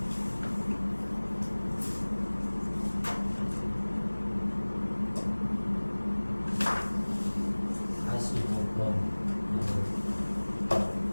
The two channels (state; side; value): inverted; both; correlation -1.00